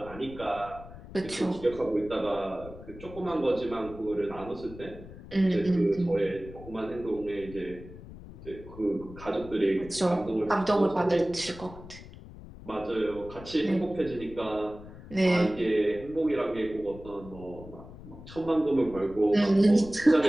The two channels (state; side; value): noise; left; rumble, 16 dB below the sound